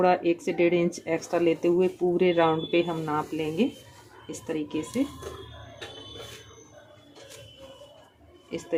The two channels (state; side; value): identical; both; correlation 1.00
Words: 1 से 1.5 इंच एक्स्ट्रा लेते हुए पूरे राउंड पे हम नाप लेंगे। इस तरीके